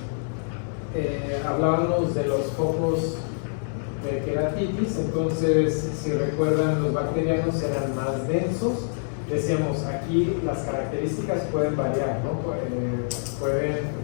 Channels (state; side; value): silent; right; digital silence